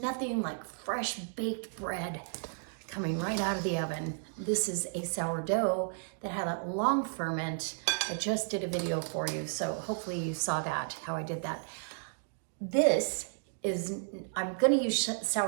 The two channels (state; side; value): silent; left; digital silence